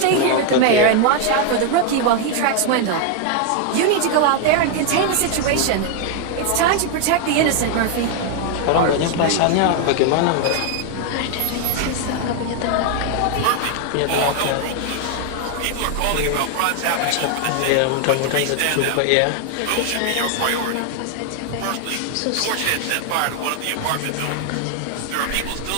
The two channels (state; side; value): different; both; correlation 0.00